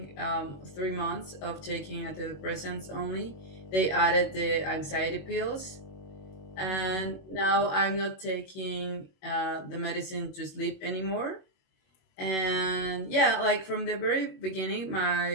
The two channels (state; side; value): late; right; 21 ms